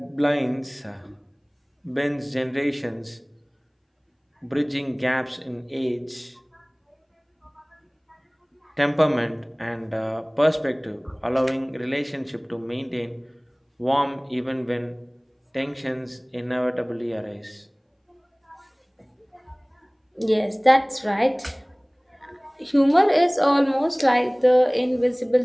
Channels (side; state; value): both; identical; correlation 1.00